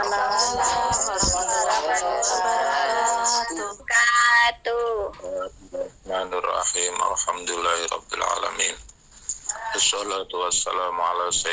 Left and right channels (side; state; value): both; identical; correlation 1.00